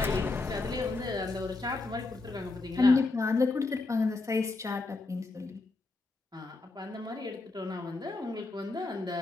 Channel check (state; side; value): quieter; right; 3.4 dB